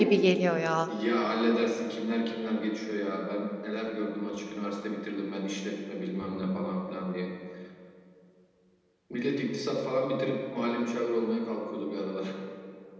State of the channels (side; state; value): both; identical; correlation 1.00